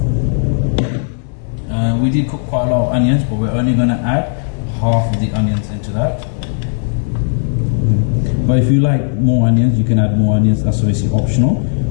We did cook quite a lot of onions, but we're only going to add half of the onions into that. But if you like more onions, you can add more onions. That's obviously optional,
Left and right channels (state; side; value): silent; right; digital silence